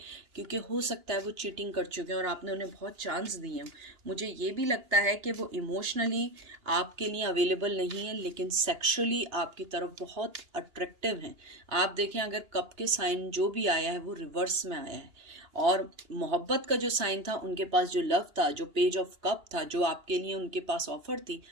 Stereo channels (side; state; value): left; late; 2.9 ms